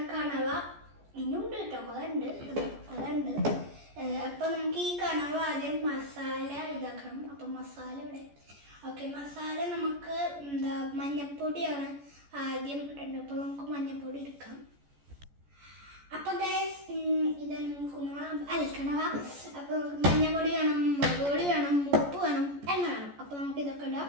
കണവ. ഇനിയുണ്ട് കേട്ടോ, അതുണ്ട്. അപ്പം നമുക്ക് ഈ കണവ ആദ്യം മസാല ഇതാക്കണം. അപ്പം മസാല ഇവിടെ. ഓക്കെ, മസാല നമുക്ക് മഞ്ഞപ്പൊടിയാണ് ആദ്യം ഇടേണ്ടത്. അപ്പോൾ നമുക്ക് മഞ്ഞപ്പൊടി എടുക്കാം. അപ്പം ഗൈസ്, ഇതാണ് കണവ. അപ്പോൾ നമുക്ക് മഞ്ഞപ്പൊടി വേണം, മുളക് പൊടി വേണം, ഉപ്പ് വേണം, എണ്ണ വേണം. അപ്പോൾ നമുക്ക് ഇതൊക്കെ ഇടാം.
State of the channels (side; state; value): left; late; 14 ms